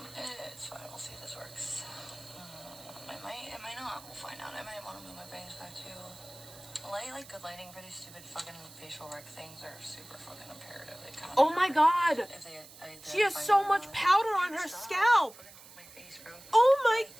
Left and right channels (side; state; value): right; noise; hiss, 19 dB below the sound